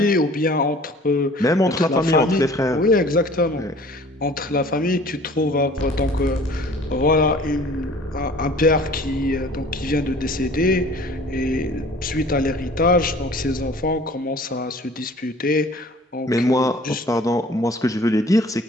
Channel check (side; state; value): both; normal; correlation 0.49